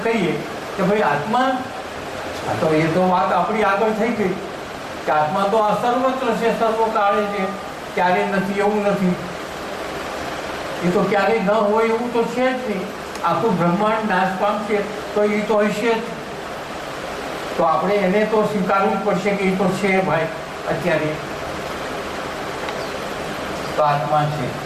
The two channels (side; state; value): both; identical; correlation 1.00